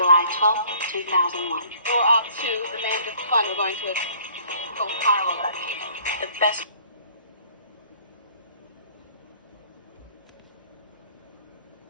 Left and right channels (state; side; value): inverted; both; correlation -0.55